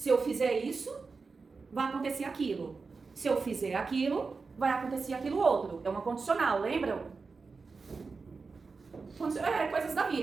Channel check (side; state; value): left; quieter; 4.5 dB